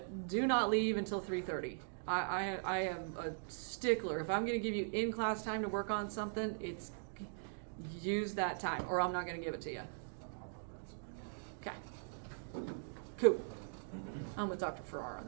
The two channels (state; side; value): silent; left; digital silence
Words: do not leave until 3:30. I am a stickler. If I'm going to give you in-class time to work on something, it's use that time, or I'm not going to give it to you. Okay. Cool. I'm with Dr. Farrar on